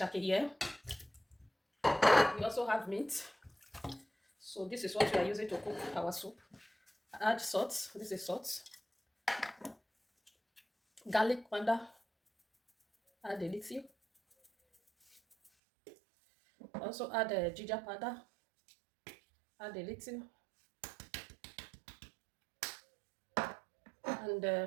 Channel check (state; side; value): drops out; left; at 15.5 s